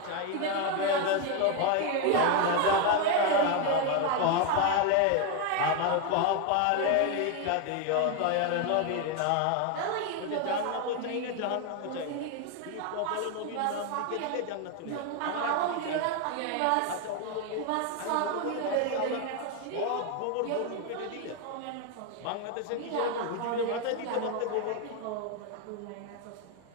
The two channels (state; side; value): different; both; correlation 0.01